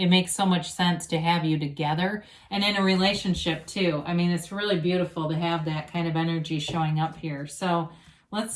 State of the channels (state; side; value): identical; both; correlation 1.00